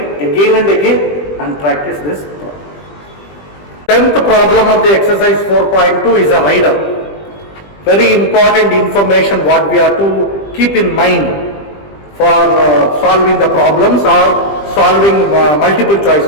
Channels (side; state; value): right; late; 20 ms